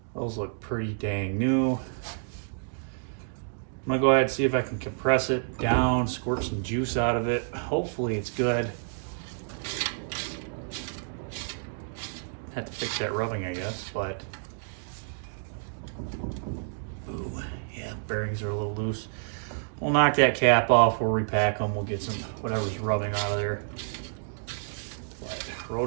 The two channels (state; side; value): silent; left; digital silence